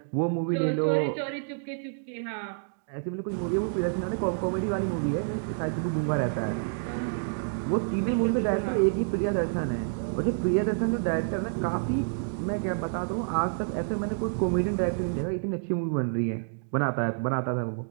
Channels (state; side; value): silent; left; digital silence